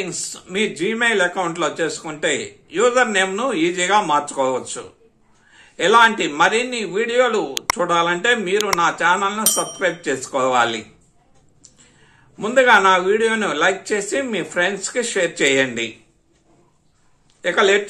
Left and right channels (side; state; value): both; identical; correlation 1.00